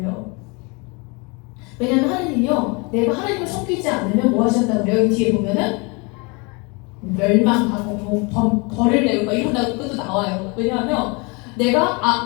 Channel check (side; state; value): right; quieter; 29.5 dB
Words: 왜냐하면 하나님이요, 내가 하나님을 섬기지 않으면 뭐 하신다고 그래요? 뒤에 보면은 멸망하고 벌을 내고 이런다고 끝도 나와요. 왜냐하면 내가